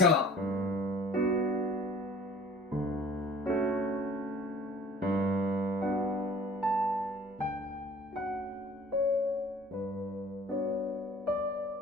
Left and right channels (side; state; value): both; normal; correlation 0.48